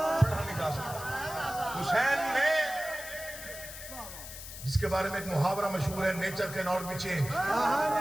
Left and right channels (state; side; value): noise; left; hiss, 11 dB below the sound